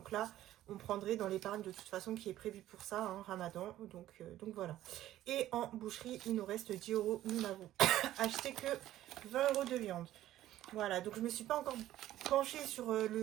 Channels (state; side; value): quieter; left; 13.7 dB